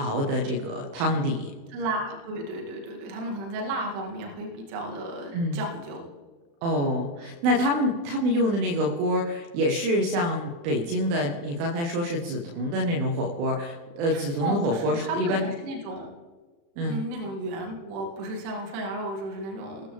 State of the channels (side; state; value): left; late; 35 ms